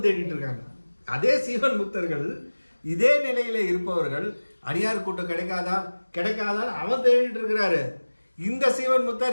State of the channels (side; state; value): both; inverted; correlation -1.00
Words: தேடிட்டு இருக்காங்க. அதே சீவன் முத்தர்கள் இதே நிலையில இருப்பவர்கள் அடியார் கூட்டம் கிடைக்காதா கிடைக்காதான்னு அவன் தேடிட்டு இருக்கிறாரு. இந்த சீவன்